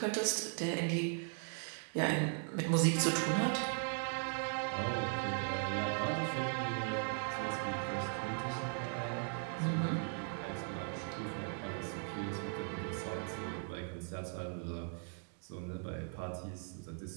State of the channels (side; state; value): left; silent; 52 dB below the other